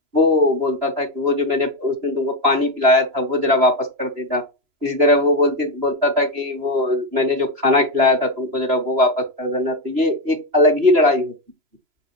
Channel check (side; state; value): left; late; 3.0 ms